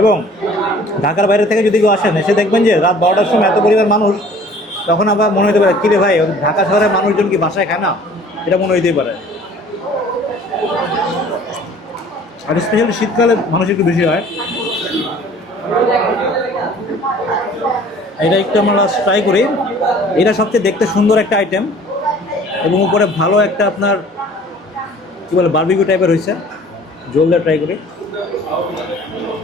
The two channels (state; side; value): normal; both; correlation 0.50